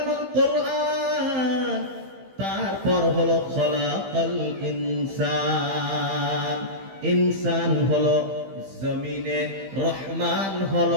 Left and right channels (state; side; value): late; left; 15 ms